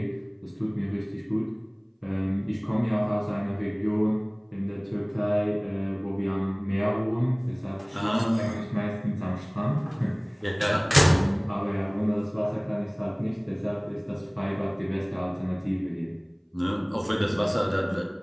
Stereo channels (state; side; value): identical; both; correlation 1.00